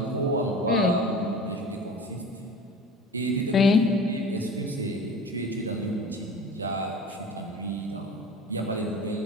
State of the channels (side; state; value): both; normal; correlation 0.38